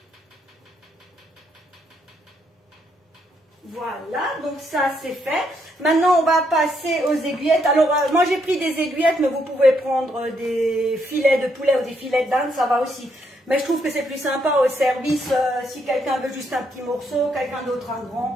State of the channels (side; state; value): both; normal; correlation 0.75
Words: Voilà, donc ça c'est fait. Maintenant, on va passer aux aiguillettes. Alors, moi j'ai pris des aiguillettes, mais vous pouvez prendre des filets de poulet ou des filets d'Inde, ça va aussi. Mais je trouve que c'est plus sympa au service, si quelqu'un veut juste un petit morceau, quelqu'un d'autre un